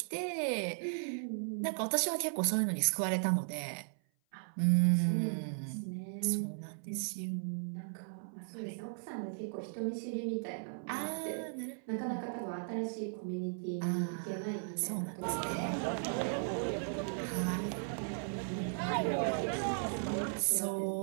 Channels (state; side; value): silent; left; 53 dB below the other